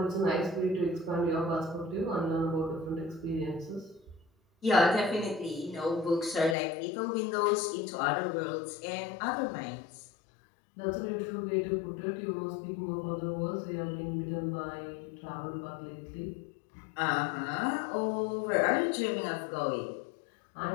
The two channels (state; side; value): drops out; right; at 6.6 s